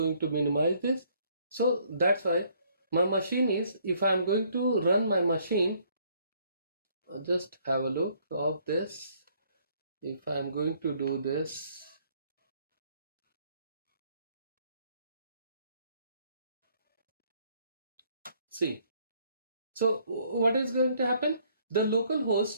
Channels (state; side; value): inverted; both; correlation -0.65